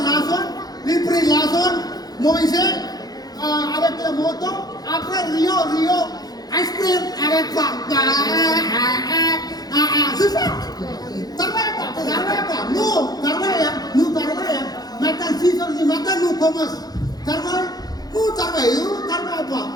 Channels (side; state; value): right; late; 0.19 ms